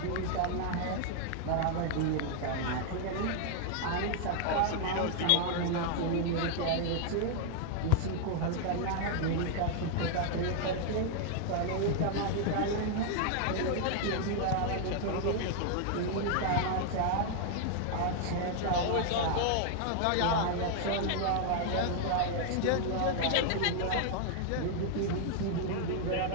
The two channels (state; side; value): different; both; correlation 0.00